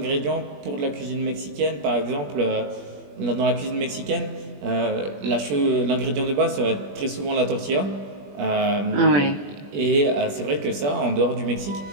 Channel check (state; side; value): late; left; 21 ms